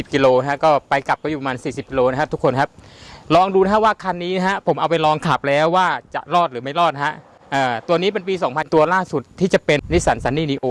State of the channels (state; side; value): identical; both; correlation 1.00